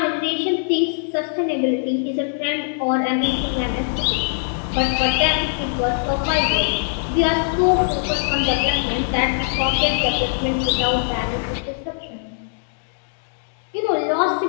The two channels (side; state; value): right; silent; digital silence